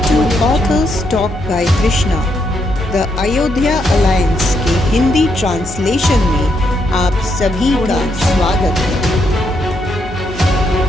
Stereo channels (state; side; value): normal; both; correlation 0.78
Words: to Authors Talk by Krishna. The Ayodhya alliance के Hindi translation में आप सभी का स्वागत है।